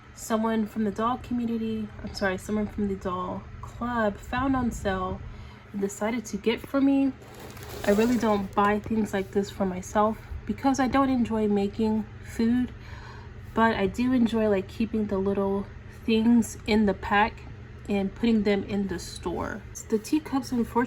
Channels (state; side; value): identical; both; correlation 1.00